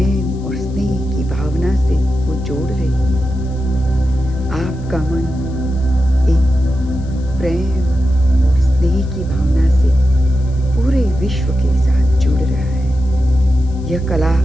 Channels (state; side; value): noise; left; hiss, 29 dB below the sound